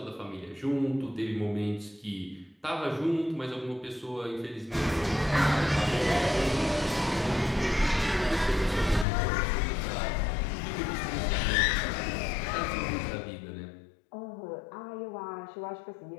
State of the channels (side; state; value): right; drops out; at 9.1 s